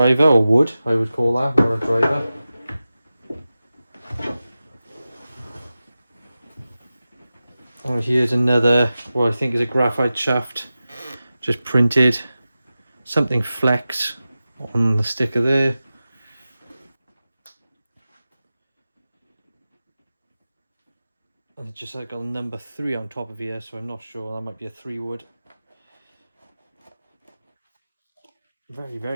or wood, I would call that, not a driver. Oh, here's another, what I think is a graphite shaft, just printed, something flex on the sticker there. And it's just like a number 3 on top of here, so I'm not sure, that might be a 3 wood. Very,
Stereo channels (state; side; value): inverted; both; correlation -0.94